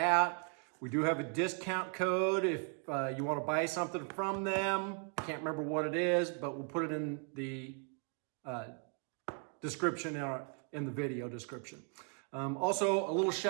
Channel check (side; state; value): left; quieter; 38.1 dB